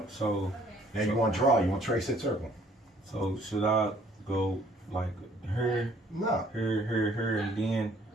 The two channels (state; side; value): normal; both; correlation 0.60